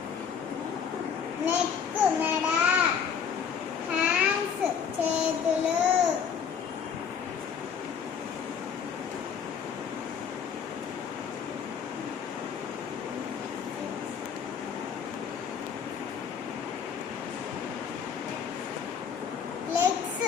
నెక్ మెడ. హ్యాండ్స్ చేతులు. లెగ్స్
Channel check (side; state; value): right; quieter; 7.1 dB